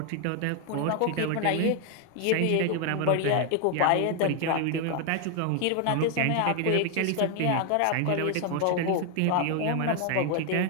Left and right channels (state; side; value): different; both; correlation 0.01